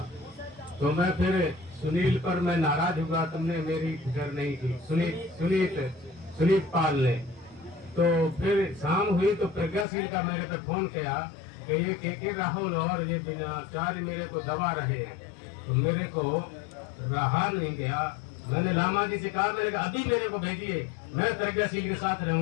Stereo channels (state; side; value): drops out; right; at 9.9 s